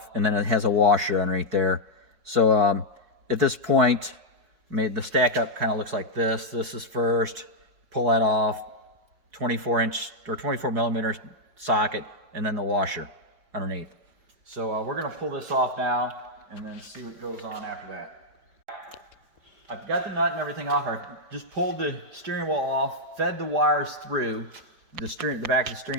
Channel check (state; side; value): late; left; 5.1 ms